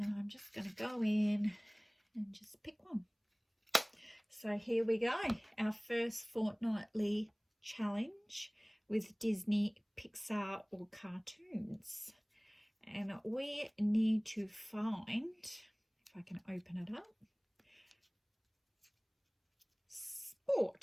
I'm just going to go in and just pick one. So here we go, our first fortnightly challenge with Disney, Pixar or cartoons. And we need to find, if I can open it up,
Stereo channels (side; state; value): both; identical; correlation 1.00